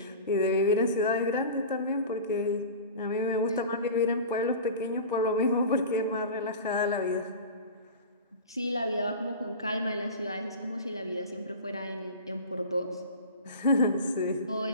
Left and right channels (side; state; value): both; inverted; correlation -0.34